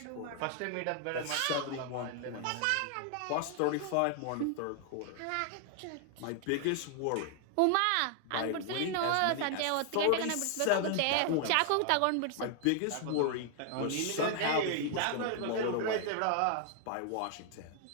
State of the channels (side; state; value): both; different; correlation 0.00